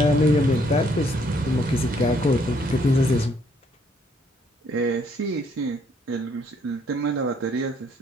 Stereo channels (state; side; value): normal; both; correlation 0.67